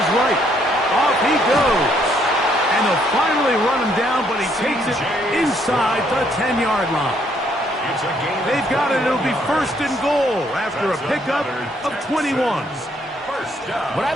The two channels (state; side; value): normal; both; correlation 0.69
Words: right. Off he goes. And they'll finally run him down, but he takes it inside the 10-yard line. They've got it. It'll be 1st and goal after a pickup of 21. What I